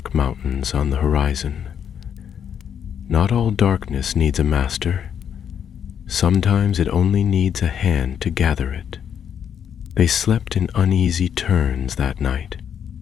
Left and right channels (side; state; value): right; quieter; 8.4 dB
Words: mountains on the horizon. "Not all darkness needs a master. Sometimes it only needs a hand to gather it." They slept in uneasy turns that night.